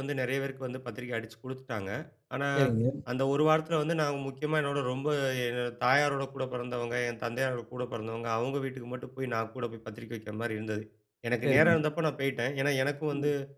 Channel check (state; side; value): identical; both; correlation 1.00